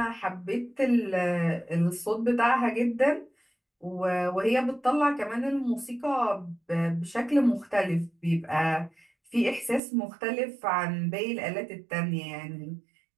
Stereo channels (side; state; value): left; drops out; at 9.8 s